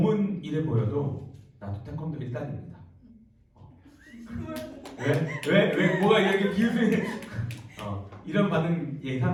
이래 보여도 나도 태권도 1단입니다. 왜 뭐가 이렇게 비웃으니 이런 반응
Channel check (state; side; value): identical; both; correlation 1.00